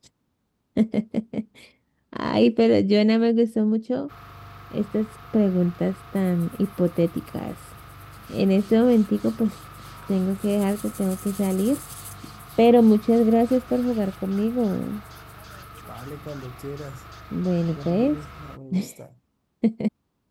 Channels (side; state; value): both; identical; correlation 1.00